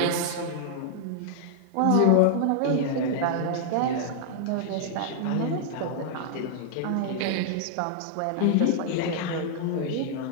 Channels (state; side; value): different; both; correlation -0.01